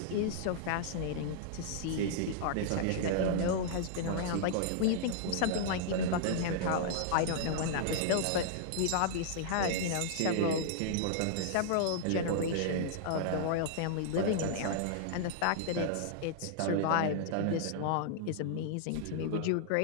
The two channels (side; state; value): both; different; correlation -0.01